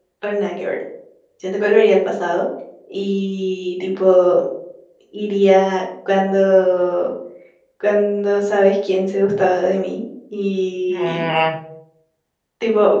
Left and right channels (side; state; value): both; identical; correlation 1.00